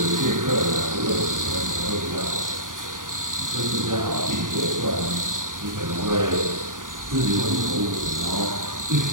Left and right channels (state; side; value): late; left; 0.89 ms